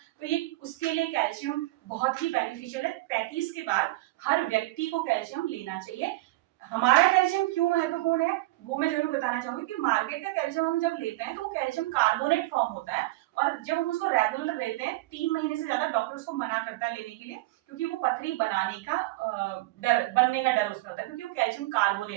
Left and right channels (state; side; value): quieter; left; 19.6 dB